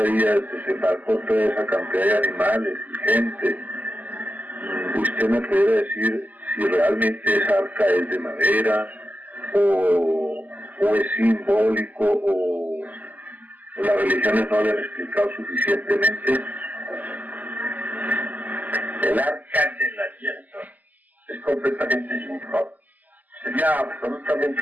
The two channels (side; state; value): left; late; 0.081 ms